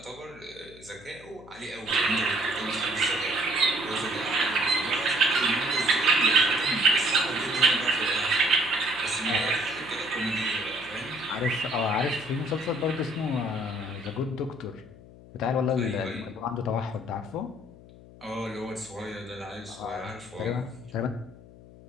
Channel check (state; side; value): noise; left; hum, 20 dB below the sound